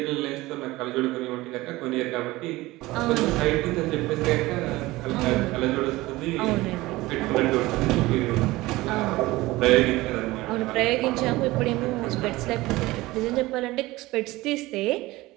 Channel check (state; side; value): quieter; left; 19.3 dB